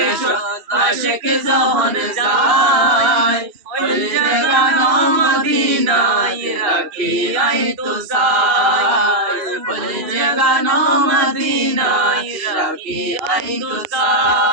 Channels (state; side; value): late; left; 2.7 ms